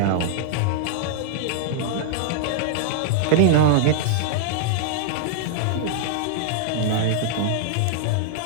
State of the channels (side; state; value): both; different; correlation -0.01